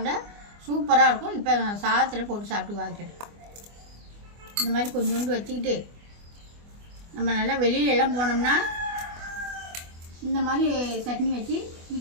சூப்பராக இருக்கும். இப்போ நான் சாதத்தில் போட்டு சாப்பிட்டு பார்க்குறேன். இந்த மாதிரி கொஞ்சோண்டு வச்சுக்கிட்டு நம்ம நல்லா வெளியிலலாம் போனோம்னா இந்த மாதிரி சட்னி வச்சு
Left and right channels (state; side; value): late; left; 24 ms